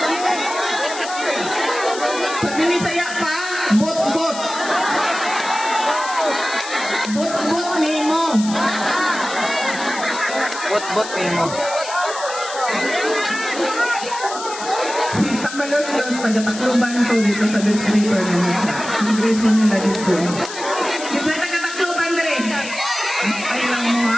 Sa Binisaya pa, bot-bot. Bot-bot nimo. Bot-bot nimo. Si Tamalos-los, taga-Tacloban to dito sa distrito naman sa Kongreso nila dito. Yung sa taga-Tacloban rin, ay lang mo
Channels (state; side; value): noise; left; hiss, 10 dB below the sound